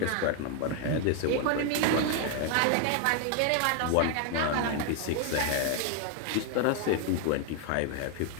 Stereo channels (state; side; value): different; both; correlation 0.00